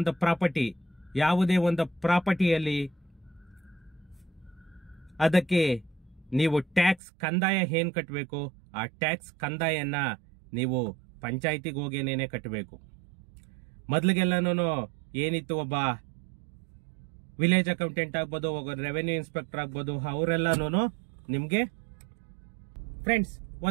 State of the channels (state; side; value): drops out; left; at 7.0 s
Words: ಪ್ರಾಪರ್ಟಿಯಲ್ಲಿ ಅದಕ್ಕೆ ನೀವು ಟ್ಯಾಕ್ಸ್ ಕಂದಾಯ ಏನ್ ಕಟ್ಟಬೇಕು, ಆ ಟ್ಯಾಕ್ಸ್ ಕಂದಾಯನ ನೀವು ಪಂಚಾಯಿತಿಗೆ ಹೋಗೇನೇನೆ ಕಟ್ಟಬೇಕು. ಮೊದ್ಲಿಗೆಲ್ಲಾನು ಏನಿತ್ತು, ಒಬ್ಬ ವಿಲೇಜ್ ಅಕೌಂಟೆಂಟ್ ಆಗ್ಬೋದು, ಒಬ್ಬ ರೆವೆನ್ಯೂ ಇನ್ಸ್ಪೆಕ್ಟರ್ ಆಗ್ಬೋದು, ಅವರೆಲ್ಲಾನು ನಿಮ್ಗೆ ಫ್ರೆಂಡ್ಸ್